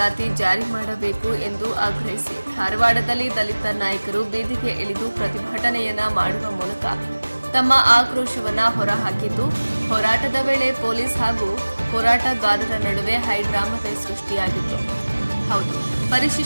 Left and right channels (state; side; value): inverted; both; correlation -1.00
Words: ಜಾರಿ ಮಾಡಬೇಕು ಎಂದು ಆಗ್ರಹಿಸಿ ಧಾರವಾಡದಲ್ಲಿ ದಲಿತ ನಾಯಕರು ಬೀದಿಗೆ ಇಳಿದು ಪ್ರತಿಭಟನೆಯನ್ನ ಮಾಡುವ ಮೂಲಕ ತಮ್ಮ ಆಕ್ರೋಶವನ್ನ ಹೊರಹಾಕಿದ್ದು, ಹೋರಾಟದ ವೇಳೆ ಪೊಲೀಸ್ ಹಾಗೂ ಹೋರಾಟಗಾರರ ನಡುವೆ ಹೈಡ್ರಾಮವೇ ಸೃಷ್ಟಿಯಾಗಿತ್ತು. ಹೌದು,